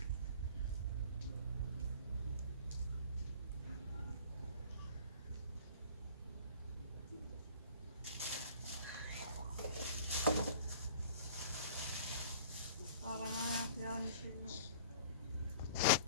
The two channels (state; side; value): inverted; both; correlation -0.46